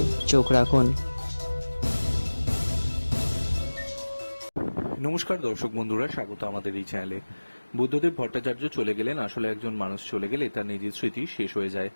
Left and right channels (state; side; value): inverted; both; correlation -1.00